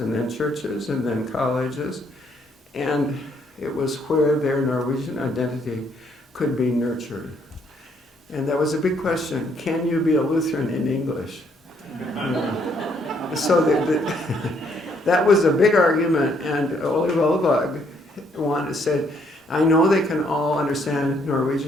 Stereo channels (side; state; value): both; normal; correlation 0.69